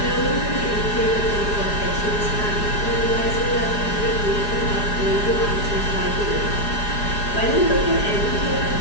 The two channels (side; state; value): right; late; 4.9 ms